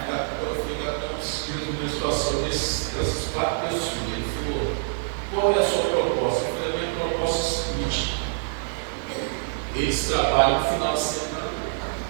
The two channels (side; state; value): left; silent; 61 dB below the other